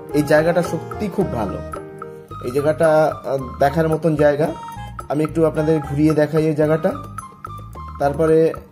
এই জায়গাটা সত্যি খুব ভালো। এই জায়গাটা দেখার মতন জায়গা। আমি একটু আপনাদের ঘুরিয়ে দেখাই এই জায়গাটা, তারপরে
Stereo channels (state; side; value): identical; both; correlation 1.00